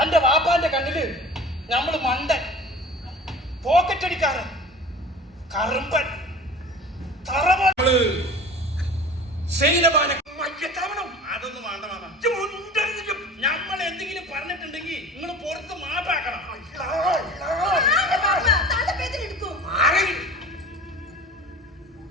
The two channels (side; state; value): both; normal; correlation 0.40